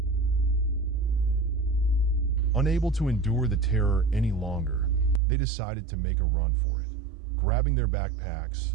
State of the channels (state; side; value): drops out; left; at 5.2 s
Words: Unable to endure the terror any longer, they decided to make a run for it. Grabbing their